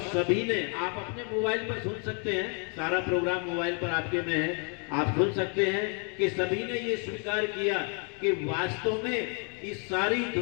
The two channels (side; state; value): right; quieter; 39.0 dB